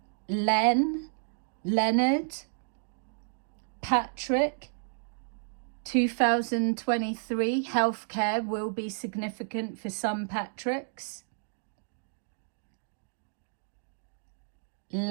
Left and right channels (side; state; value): left; silent; digital silence